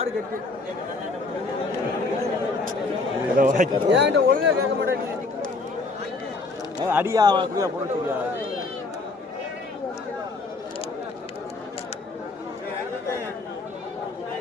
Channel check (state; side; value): quieter; right; 3.7 dB